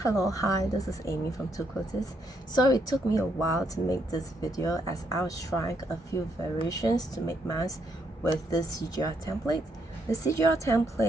Hello, hi, this is Amy from Two Quilters. So it took me a while to make this video as I was trying a few variations to make masks with this CGR template. The CGR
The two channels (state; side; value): normal; both; correlation 0.75